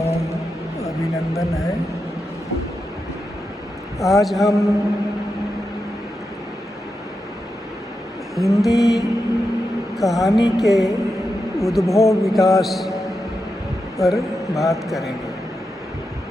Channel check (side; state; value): both; normal; correlation 0.88